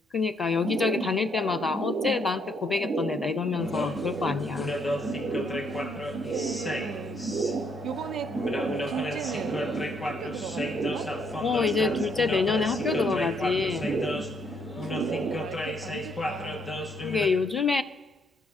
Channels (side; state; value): both; normal; correlation 0.71